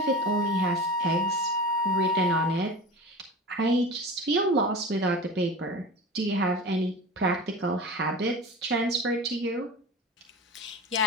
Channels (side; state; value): both; normal; correlation 0.32